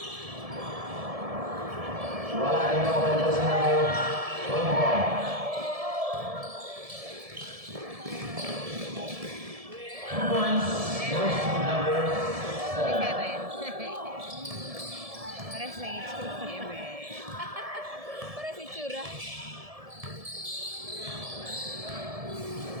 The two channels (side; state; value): left; late; 1.7 ms